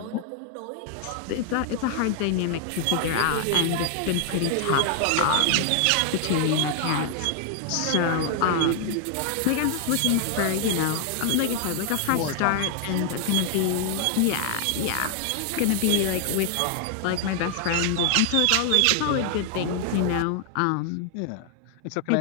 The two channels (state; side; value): different; both; correlation 0.00